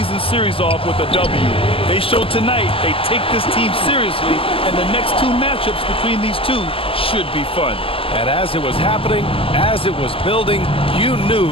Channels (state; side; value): late; right; 0.26 ms